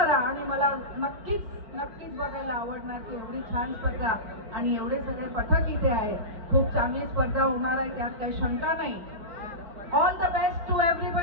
आणि मला नक्कीच बघायला आवडणार की एवढी छान स्पर्धा आणि एवढे सगळे पथक इथे आहे. खूप चांगली स्पर्धा होणार आहे, त्यात काही शंका नाही. All the best to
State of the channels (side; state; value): left; late; 5.0 ms